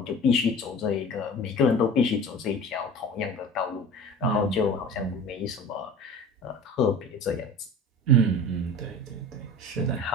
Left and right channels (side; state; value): both; normal; correlation 0.39